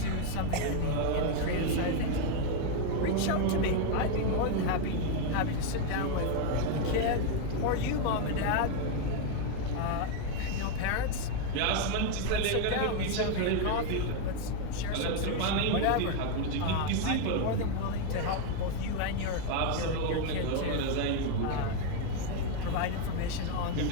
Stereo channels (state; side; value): different; both; correlation 0.01